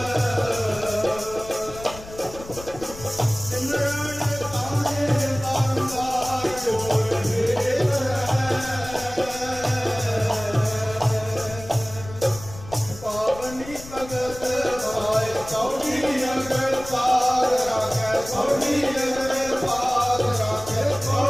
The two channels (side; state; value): left; noise; rumble, 15 dB below the sound